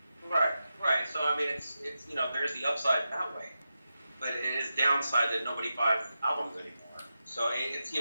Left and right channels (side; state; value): both; inverted; correlation -0.90